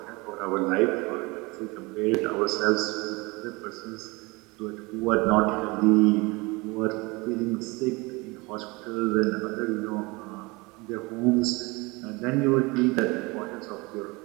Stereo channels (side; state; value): left; quieter; 25.1 dB